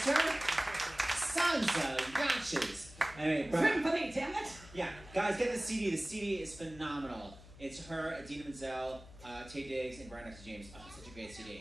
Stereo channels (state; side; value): noise; left; hum, 19 dB below the sound